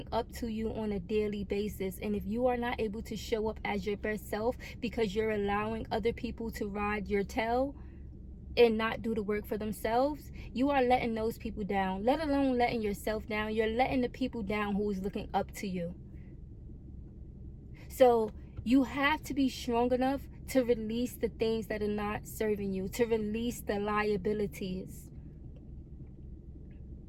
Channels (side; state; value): both; identical; correlation 1.00